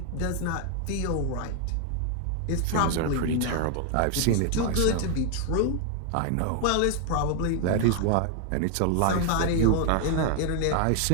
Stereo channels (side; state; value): both; different; correlation 0.00